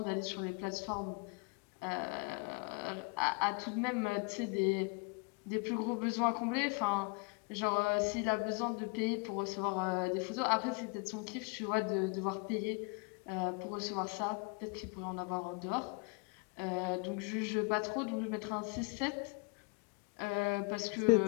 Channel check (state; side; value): quieter; right; 32.1 dB